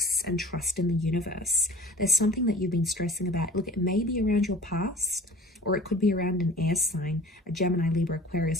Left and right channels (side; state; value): both; normal; correlation 0.45